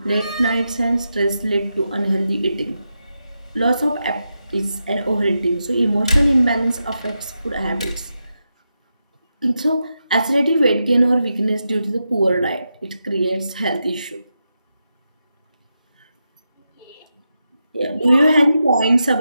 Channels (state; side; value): inverted; both; correlation -0.87